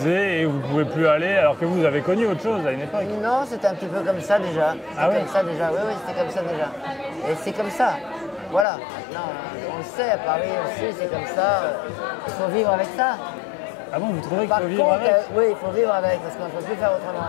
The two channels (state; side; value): drops out; right; at 8.7 s